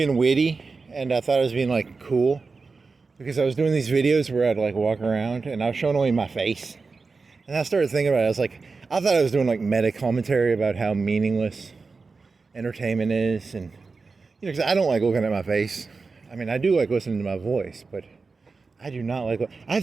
witty, and I thought I was being like cool, because I was doing these videos where I'd like walk around and I was showing only my face. And I started thinking about it. I thought I was doing like meta commentary about how meaningless entertainment is, and because I don't like looking at my face. I mean, I do like listening to my voice, but I do not like. I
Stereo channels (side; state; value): left; quieter; 4.3 dB